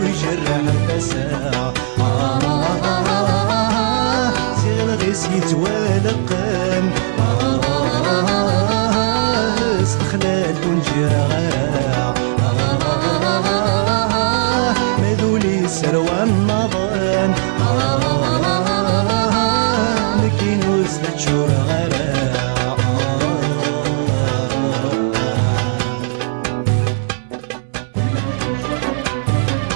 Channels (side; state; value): left; silent; digital silence